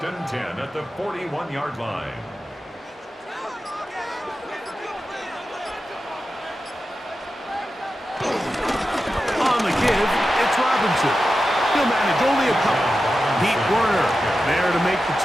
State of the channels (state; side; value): normal; both; correlation 0.92